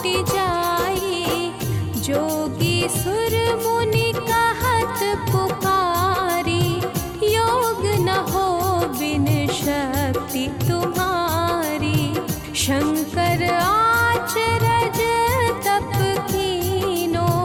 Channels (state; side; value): identical; both; correlation 1.00